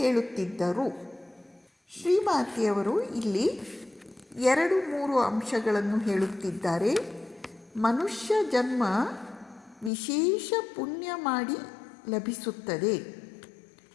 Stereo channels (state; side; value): drops out; right; at 9.9 s